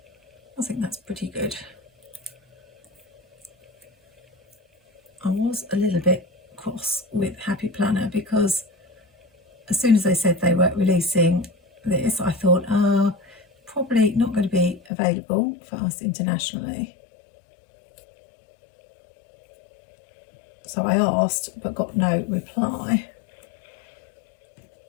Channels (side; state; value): right; drops out; at 14.8 s